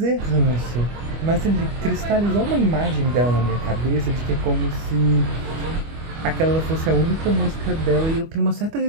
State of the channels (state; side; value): late; left; 25 ms